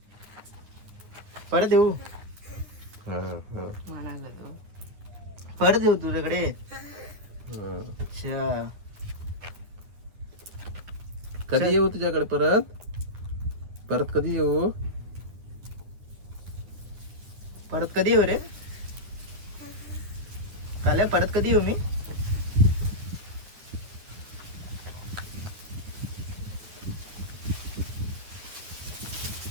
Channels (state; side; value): late; left; 10 ms